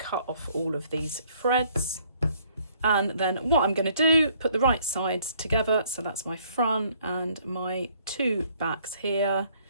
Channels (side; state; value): both; inverted; correlation -0.63